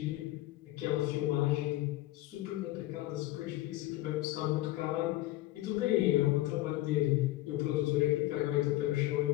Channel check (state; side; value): quieter; right; 16.7 dB